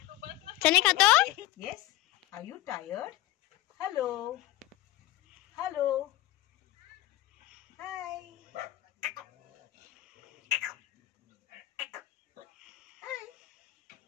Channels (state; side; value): quieter; right; 16.2 dB